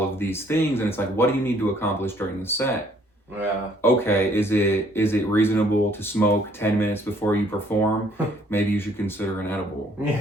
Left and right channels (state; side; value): normal; both; correlation 0.63